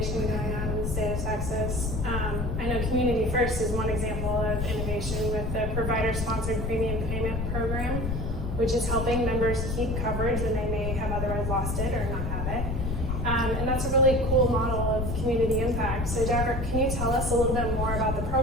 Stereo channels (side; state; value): left; noise; rumble, 2 dB below the sound